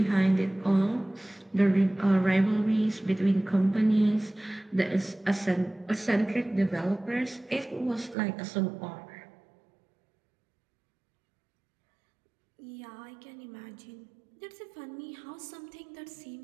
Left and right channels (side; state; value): left; drops out; at 8.2 s